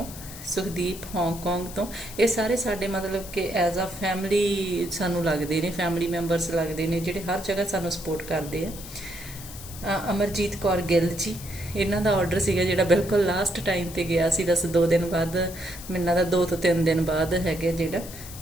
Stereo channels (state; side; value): noise; left; hiss, 14 dB below the sound